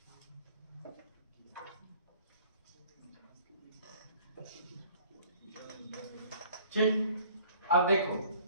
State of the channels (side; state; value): both; inverted; correlation -0.54